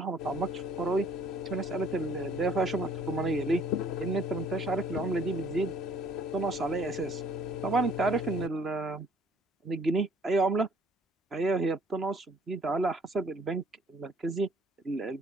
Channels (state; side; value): normal; both; correlation 0.58